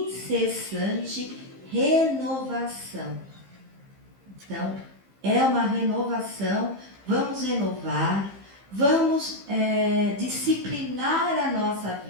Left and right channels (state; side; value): late; left; 15 ms